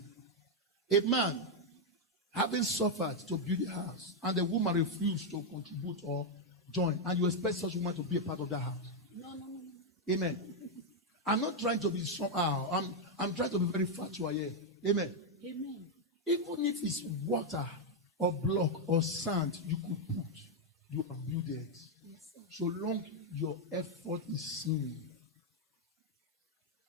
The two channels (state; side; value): normal; both; correlation 0.01